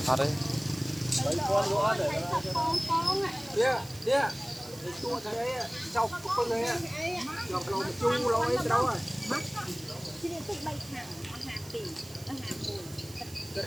thật đấy đi chua thế đấy sau con này chọc lò chu lôi đâu rồi chị nên tích bay thẳng hàng tỷ hàng bùn được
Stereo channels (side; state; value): right; noise; hiss, 17 dB below the sound